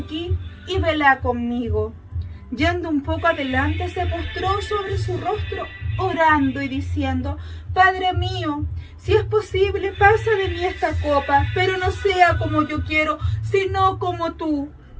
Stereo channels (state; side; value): identical; both; correlation 1.00